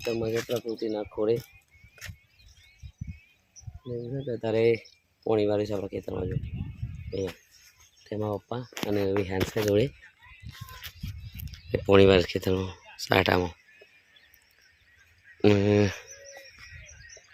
જે પ્રકૃતિના ખોળે તારે પોણી વાળી છે આપણા ખેતરમાં. જો અહીંયા તેમાં પપ્પા અને વિહાન છે જોડે એ પોણી વાળી ખેતરમાં સાટામાં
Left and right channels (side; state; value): both; identical; correlation 1.00